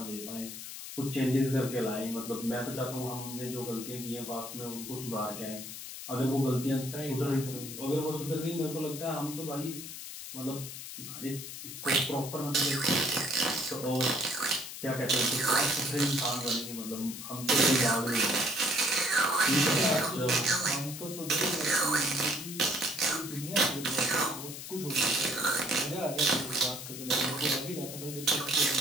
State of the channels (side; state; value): left; noise; hiss, 10 dB below the sound